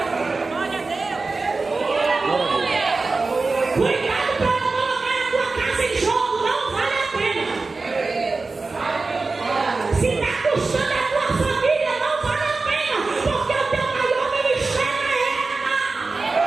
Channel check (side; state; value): left; quieter; 3.8 dB